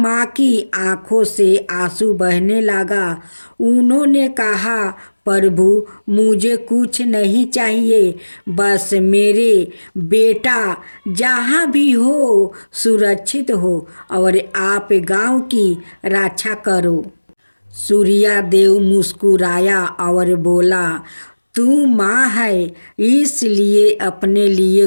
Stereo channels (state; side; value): inverted; both; correlation -1.00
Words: की आंखों से आंसू बहने लगा। उन्होंने कहा, प्रभु, मुझे कुछ नहीं चाहिए, बस मेरे बेटा जहाँ भी हो सुरक्षित हो और आप गांव की रक्षा करो। सूर्या देव मुस्कुराया और बोला, तू माँ है, इसलिए अपने लिए